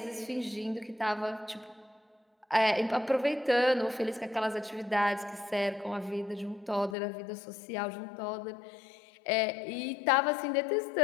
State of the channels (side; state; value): right; drops out; at 7.0 s